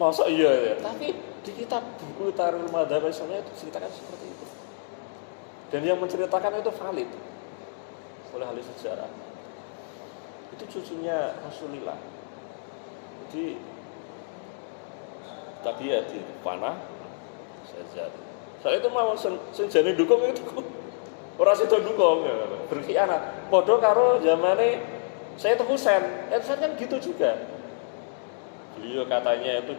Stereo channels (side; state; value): right; silent; digital silence